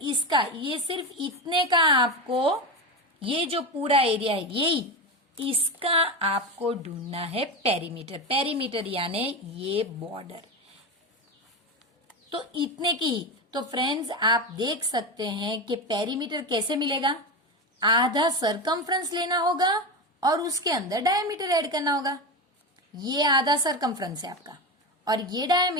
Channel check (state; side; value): normal; both; correlation 0.19